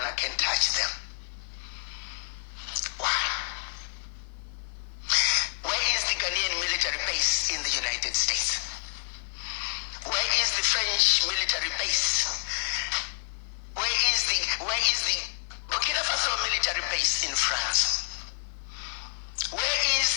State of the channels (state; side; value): silent; right; digital silence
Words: can touch them. Why? Where is the Ghanaian military base in the United States? Where is the French military base? Where is the Burkina Faso military base in France? Where is